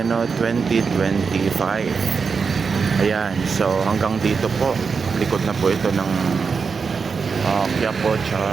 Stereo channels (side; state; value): left; quieter; 5.4 dB